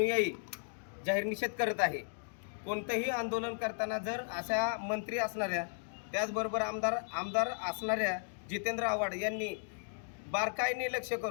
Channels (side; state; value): right; silent; digital silence